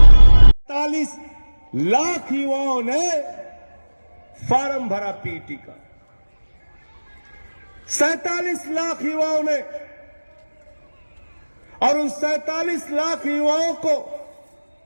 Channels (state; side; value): inverted; both; correlation -1.00